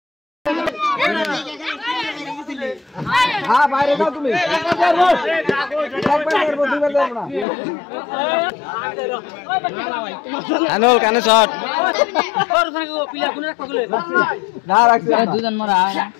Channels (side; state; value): right; drops out; at 7.5 s